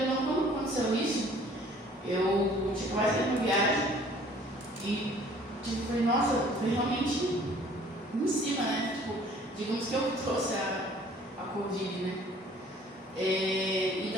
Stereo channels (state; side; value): normal; both; correlation 0.54